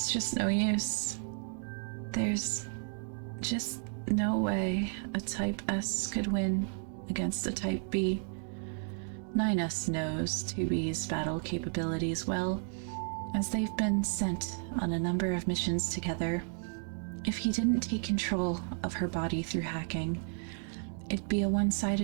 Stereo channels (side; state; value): left; silent; 56 dB below the other